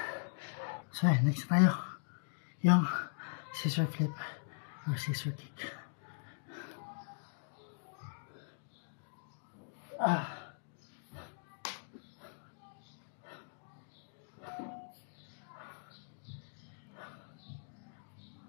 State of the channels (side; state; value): right; silent; digital silence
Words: So next tayo. Yung scissor flip or scissor kick.